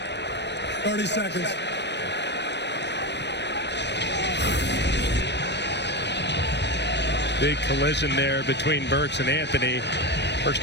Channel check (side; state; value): right; late; 0.50 ms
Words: 30 seconds. Big collision there between Burks and Anthony. Burks